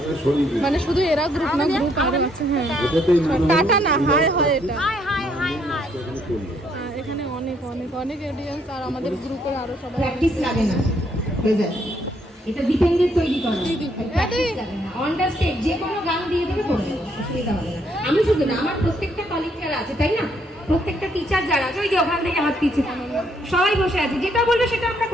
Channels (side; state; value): both; normal; correlation 0.70